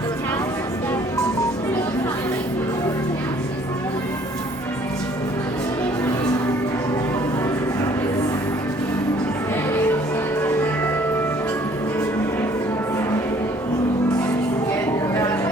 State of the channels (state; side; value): normal; both; correlation 0.59